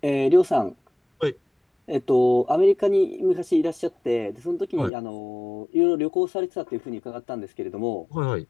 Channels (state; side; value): drops out; right; at 4.9 s